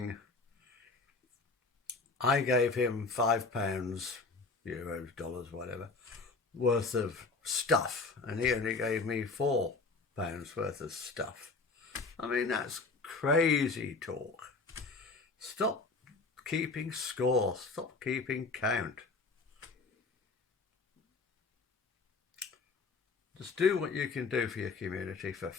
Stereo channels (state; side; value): quieter; right; 4.0 dB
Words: I gave him £5, euros, dollars, whatever, worth of stuff, and he only gave me £4 worth of stuff. I mean, that's crazy talk. Stop keeping score, stop keeping count. Just do what you can do for your community for